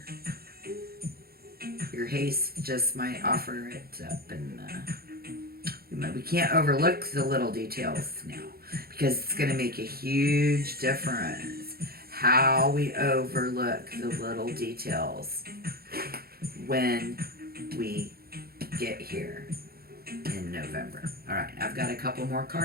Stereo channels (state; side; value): late; left; 0.44 ms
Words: your haste just might offer it up, and we can't overlook the little details now, because it's going to make a huge difference how we overlook the little details when we get here in November. All right, I've got a couple more